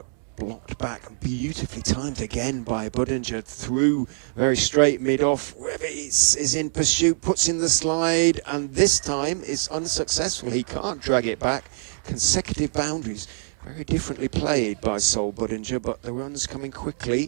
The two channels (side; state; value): left; silent; digital silence